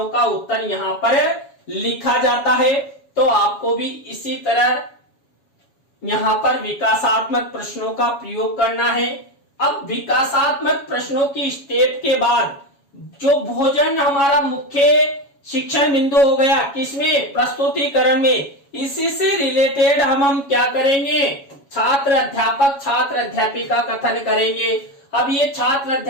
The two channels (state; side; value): late; right; 7.2 ms